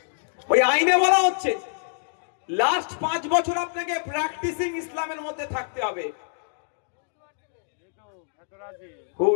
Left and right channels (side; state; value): right; silent; digital silence